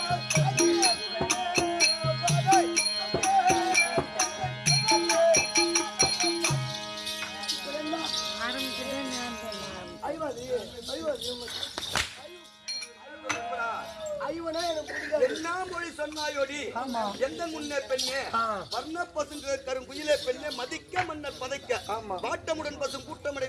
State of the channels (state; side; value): identical; both; correlation 1.00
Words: ஐவனா எனக்கு பிடிக்காது. என்ன மொழி சொன்னாயோடி? எந்த முன்னே பெண்ணே வர்ண பசுங்க கருங்குயிலே பெண்ணே மதிக்க மன்னர் பதைக்க வாட்டமுடன் பசும் கூட்டமடை